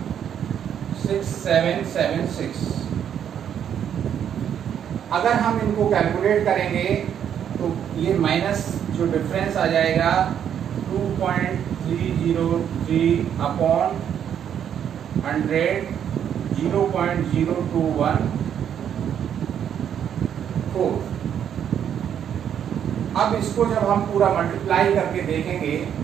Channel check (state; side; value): quieter; left; 9.0 dB